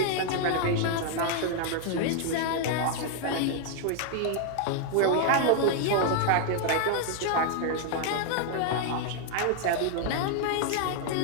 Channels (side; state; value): both; different; correlation 0.00